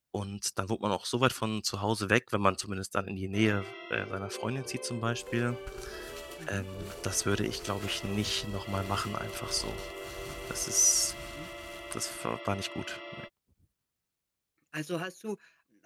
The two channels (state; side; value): identical; both; correlation 1.00